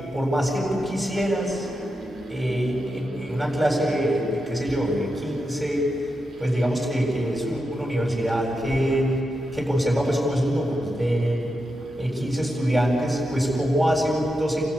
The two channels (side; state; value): both; normal; correlation 0.87